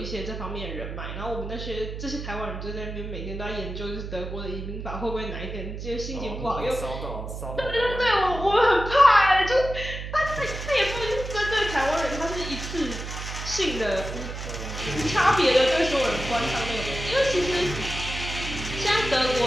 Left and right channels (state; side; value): noise; right; hum, 8 dB below the sound